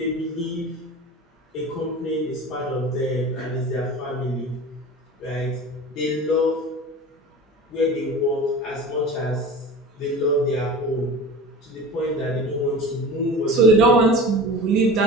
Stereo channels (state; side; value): normal; both; correlation 0.36